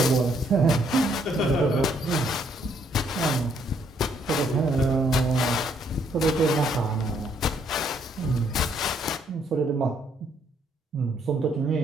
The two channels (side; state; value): both; normal; correlation 0.69